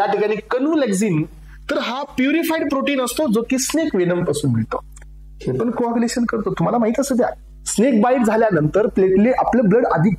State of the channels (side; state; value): both; identical; correlation 1.00